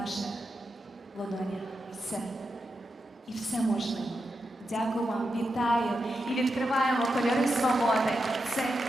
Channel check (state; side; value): normal; both; correlation 0.88